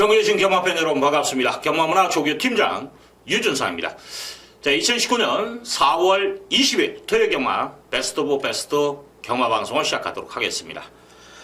경마팬 여러분 반갑습니다. 경마문화 조교 팀장 유준상입니다. 자, 2019년 4월 20일 토요일 경마 베스트 오브 베스트 경마 방송을 시작하도록 하겠습니다.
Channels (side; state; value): both; identical; correlation 1.00